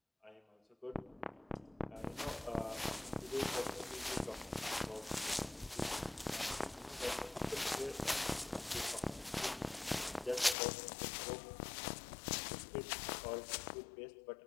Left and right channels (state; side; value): drops out; right; at 10.6 s